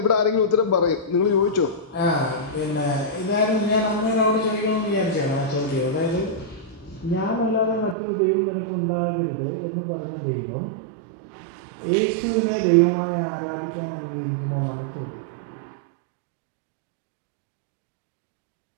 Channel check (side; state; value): left; drops out; at 8.0 s